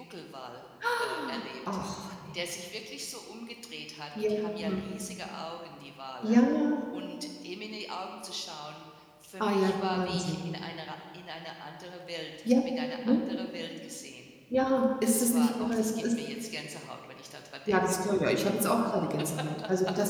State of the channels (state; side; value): identical; both; correlation 1.00